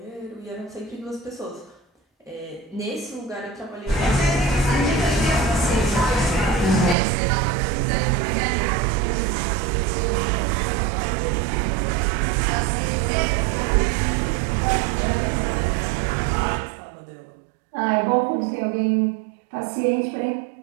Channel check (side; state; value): left; drops out; at 7.0 s